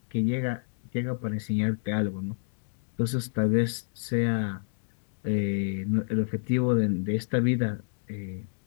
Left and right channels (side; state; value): right; silent; digital silence